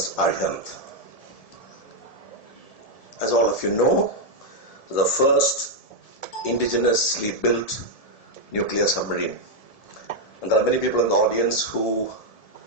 Arihant. As all of you know, the first indigenously built nuclear submarine. And there are many people in the audience who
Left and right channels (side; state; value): right; late; 1.7 ms